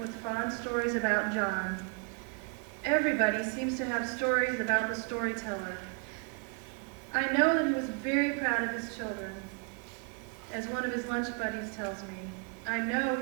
with fond stories about John. Everybody seems to have stories about the storyteller. I know that he was very proud of his children. As one of his lunch buddies tells me, I know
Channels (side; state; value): left; quieter; 35.7 dB